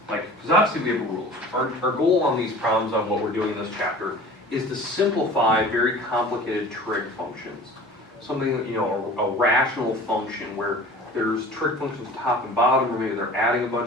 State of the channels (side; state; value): both; normal; correlation 0.42